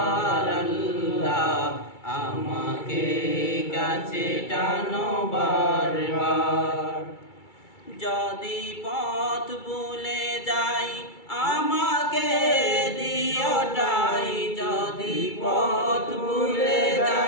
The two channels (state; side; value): late; right; 2.3 ms